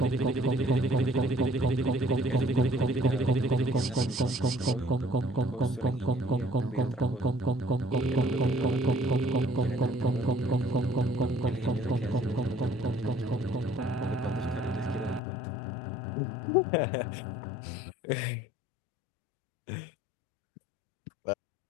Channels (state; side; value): drops out; right; at 15.2 s